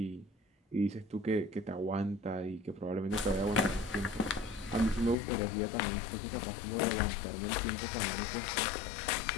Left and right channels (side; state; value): right; drops out; at 5.2 s